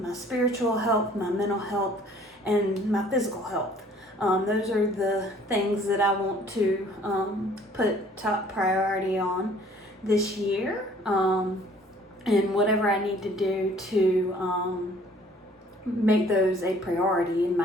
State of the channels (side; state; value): both; normal; correlation 0.56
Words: my spiritual health, my mental health, and my physical health. Those are the things that I want to put top priority on this year, and whatever I need to do to make those a priority in